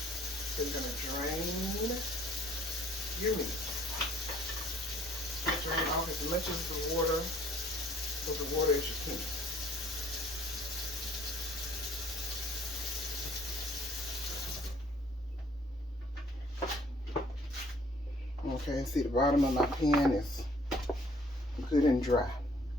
So you're gonna drain your meat. Drain off as much of the water, as you can. Okay, see the bottom of my pan is good and dry.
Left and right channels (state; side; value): normal; both; correlation 0.59